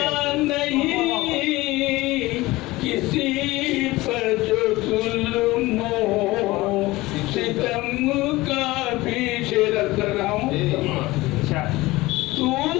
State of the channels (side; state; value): right; quieter; 19.7 dB